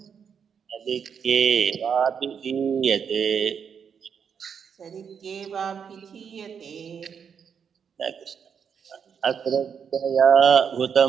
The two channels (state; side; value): quieter; left; 7.1 dB